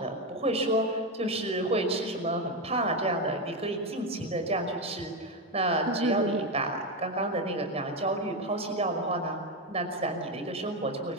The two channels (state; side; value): normal; both; correlation 0.11